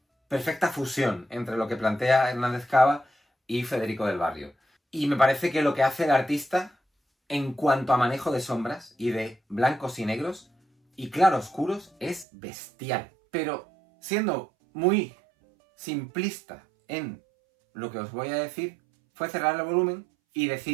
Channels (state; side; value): drops out; left; at 12.2 s